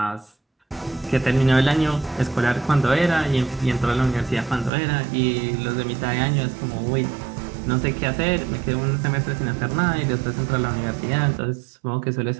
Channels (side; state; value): left; drops out; at 4.7 s